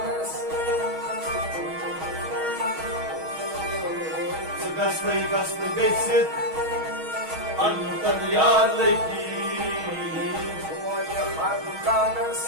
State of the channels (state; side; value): late; left; 6.3 ms